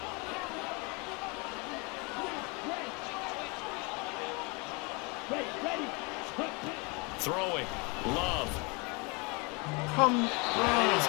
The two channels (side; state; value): right; quieter; 29.2 dB